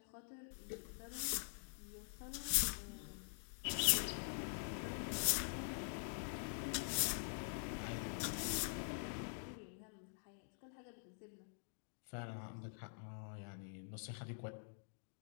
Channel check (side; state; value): right; silent; digital silence